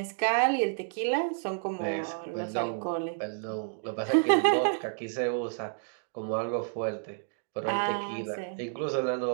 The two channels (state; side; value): silent; left; digital silence